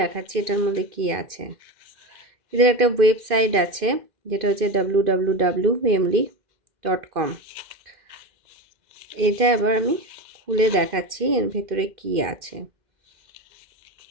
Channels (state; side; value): late; left; 2.6 ms